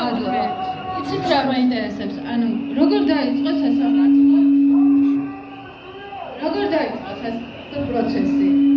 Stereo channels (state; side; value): identical; both; correlation 1.00